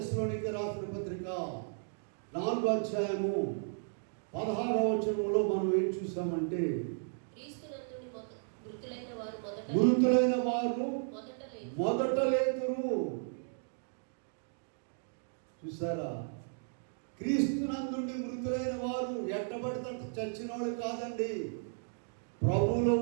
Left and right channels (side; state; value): left; silent; digital silence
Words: రాసిన పత్రిక 4వ అధ్యాయము 16వ వచనంలో మనం ఏం చూసామంటే, మృతులైన వారు మొదట లేతురు. చూసారా? క్రీస్తునందుండి మృతులైన వారు ఎట్టబడితే చచ్చిన వాళ్ళు కాదండి. ప్రభువులో